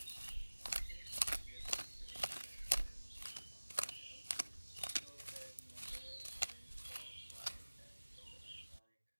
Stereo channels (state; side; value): inverted; both; correlation -1.00